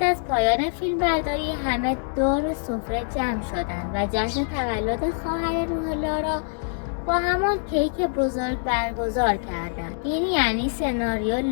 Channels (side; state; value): right; silent; digital silence